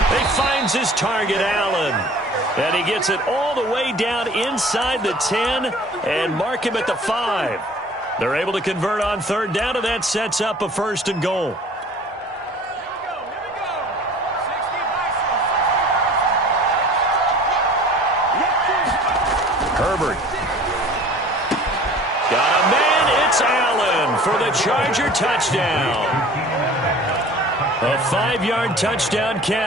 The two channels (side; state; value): both; normal; correlation 0.46